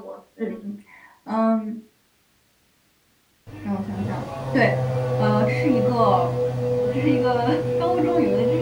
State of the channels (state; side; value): identical; both; correlation 1.00